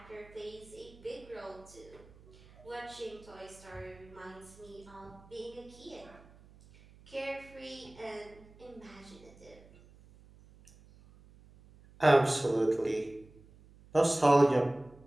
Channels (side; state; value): right; noise; hum, 23 dB below the sound